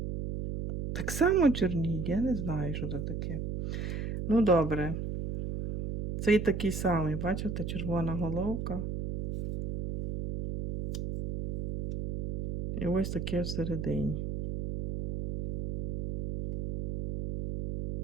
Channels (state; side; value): noise; right; hum, 4 dB below the sound